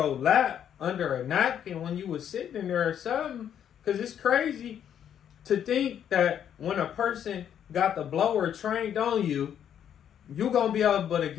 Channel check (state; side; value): quieter; right; 9.3 dB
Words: lap under a napkin when you was sitting in there or something. Because it's crazy to think that when a person got the blower trained on you, you gonna be able to